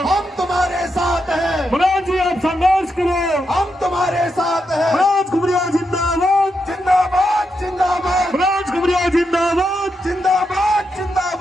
हम तुम्हारे साथ हैं। मनोज जी आप संघर्ष करो, हम तुम्हारे साथ हैं। मनोज घुमरिया जिंदाबाद जिंदाबाद जिंदाबाद। मनोज घुमरिया जिंदाबाद जिंदाबाद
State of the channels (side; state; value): both; normal; correlation 0.84